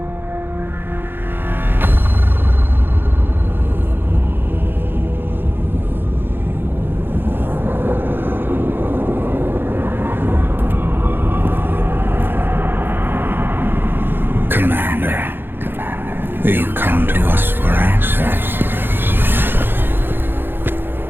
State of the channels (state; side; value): late; left; 0.10 ms